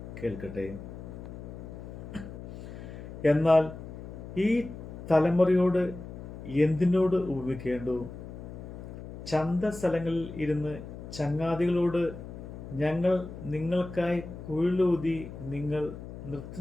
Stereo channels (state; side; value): noise; left; hum, 11 dB below the sound